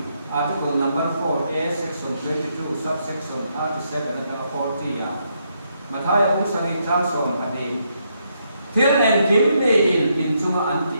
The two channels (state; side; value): inverted; both; correlation -0.77